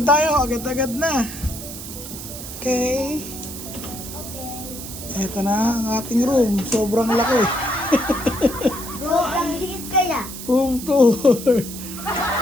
tayo. Agad-agad na. Okay. Ito na ang ating room. Sobrang laki. Bro, ang liit kaya. Room tour.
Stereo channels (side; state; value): right; noise; hiss, 10 dB below the sound